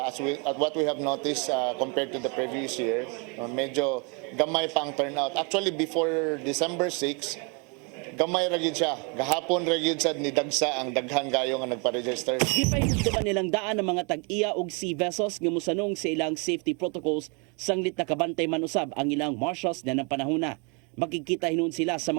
what we have noticed compared to the previous year, medyo gamay pa ang turnout. Actually before December 6, gamay ra gyud siya. Gahapon ra gyud sad ni dagsa ang daghan gayo nga nagpa-register. Gipahigduman nilang daan ng mga tag-iya og sea vessels nga musanong sa ilang safety protocols sanglit nakabantay man usab ang ilang marshals na ng panahona. Makikita hinon sila sa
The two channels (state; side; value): quieter; left; 33.9 dB